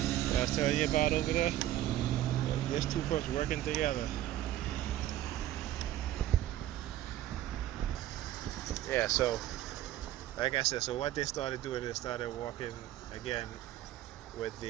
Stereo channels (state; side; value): quieter; left; 13.3 dB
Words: I was telling you about over there. There's two folks working together. Yeah. So, like I said, so what they started doing, they started walking again with